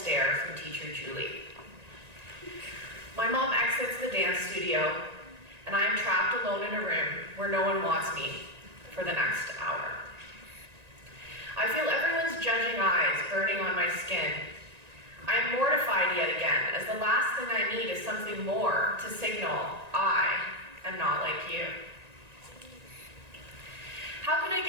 from teacher Julie. My mom exits the dance studio, and I am trapped alone in a room where no one wants me for the next hour. I feel everyone's judging eyes burning on my skin. I am mortified yet again, as the last thing I need is something more to signal I am not like you. How can I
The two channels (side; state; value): left; late; 1.9 ms